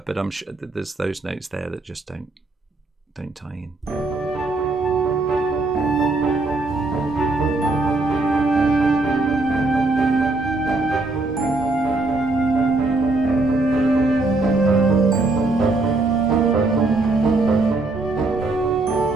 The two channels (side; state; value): left; quieter; 3.2 dB